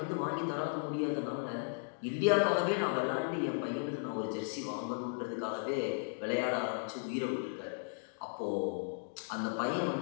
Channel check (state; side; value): silent; right; digital silence